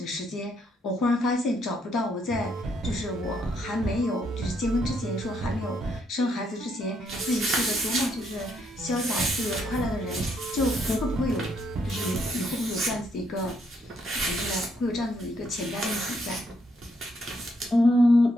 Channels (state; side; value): normal; both; correlation 0.73